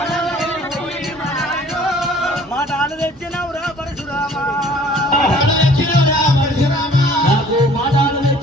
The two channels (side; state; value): both; normal; correlation 0.53